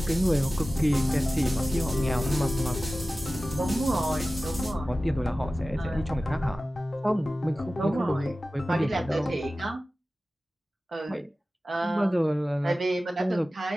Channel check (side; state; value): both; normal; correlation 0.96